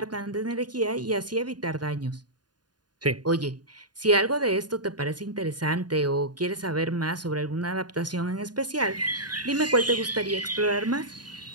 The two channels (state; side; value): late; left; 0.70 ms